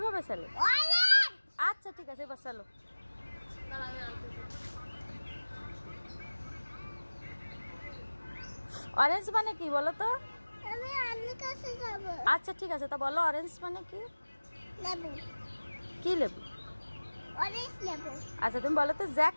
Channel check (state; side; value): inverted; both; correlation -1.00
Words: চালো। আচ্ছা ঠিক আছে, এবার চালো। অরেঞ্জ মানে কি বলো তো? আচ্ছা ঠিক আছে, তা বলো অরেঞ্জ মানে কি? লেবু। কি লেবু? অরেঞ্জ লেবু। আচ্ছা তুমি বলো তো জ্যাক